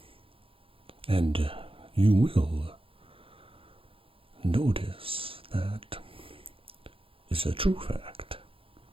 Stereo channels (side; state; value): left; late; 0.27 ms